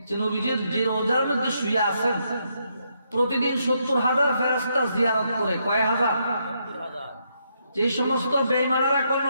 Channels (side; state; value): both; inverted; correlation -0.78